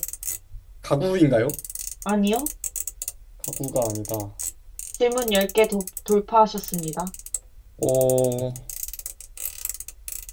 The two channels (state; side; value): identical; both; correlation 1.00